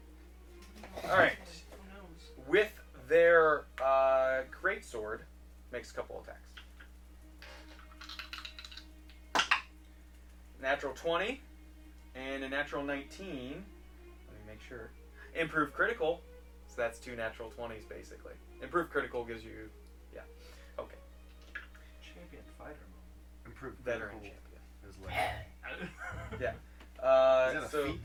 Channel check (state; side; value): identical; both; correlation 1.00